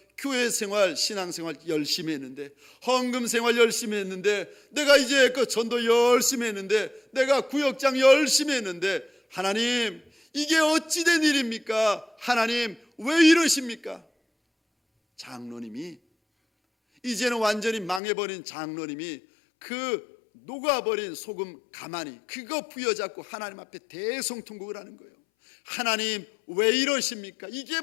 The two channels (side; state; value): right; drops out; at 18.0 s